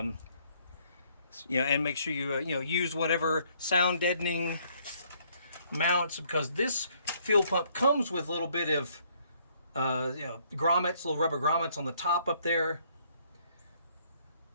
make sure you use whatever sound deadening mounts, because this fuel pump comes with a little bit of grommets, little rubber grommets on the top up there.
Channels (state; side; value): inverted; both; correlation -0.66